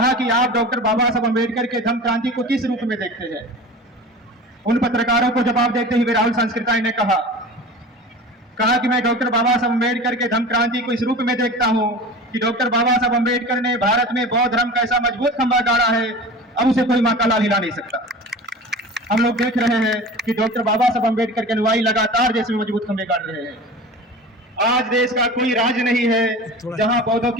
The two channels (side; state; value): both; normal; correlation 0.35